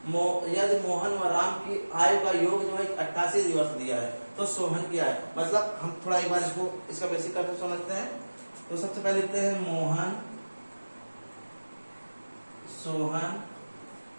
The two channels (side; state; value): both; inverted; correlation -1.00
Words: व राम की आय का योग जो है 88 दिवस दिया है। तो सोहन की आय, मतलब हम थोड़ा एक बार इसको, इसका बेसिक कंसेप्ट समझते हैं। तो सबसे पहले लिखते हैं मोहन सोहन